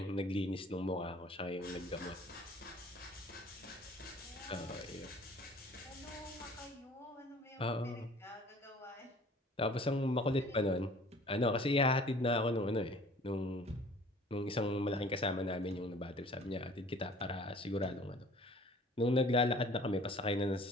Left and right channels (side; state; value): both; normal; correlation 0.50